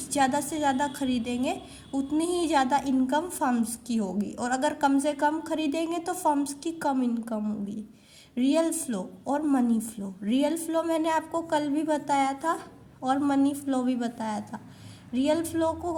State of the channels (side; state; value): both; identical; correlation 1.00